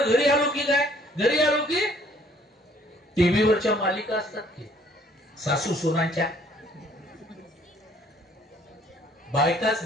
घरी आलो की काय, घरी आलो की टीव्हीवरच्या मालिका असतात की सासू सुनांच्या,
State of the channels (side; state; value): both; normal; correlation 0.60